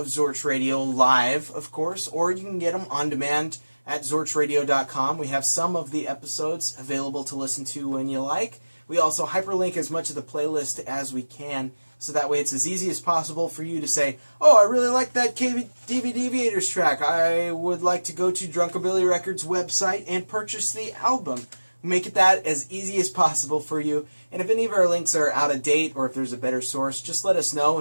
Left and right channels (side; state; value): both; inverted; correlation -1.00